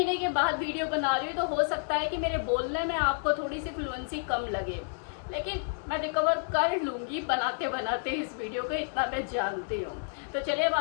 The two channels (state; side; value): silent; right; digital silence